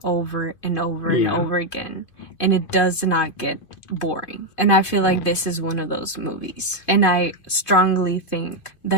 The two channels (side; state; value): right; late; 2.5 ms